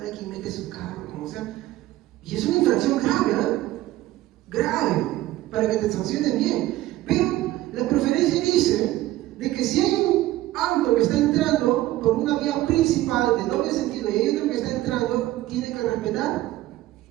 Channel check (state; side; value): quieter; left; 15.8 dB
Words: quien mete su carro, como sea. Y es una infracción grave, ¿eh? Grave, para que te sancionen bien. Pero la preferencia dice de que si hay un auto que está entrando por una vía principal de doble sentido y hay otro que está entrando, tiene que respetar.